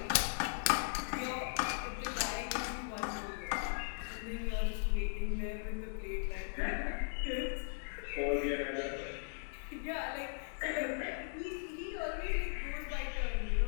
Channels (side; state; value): right; silent; digital silence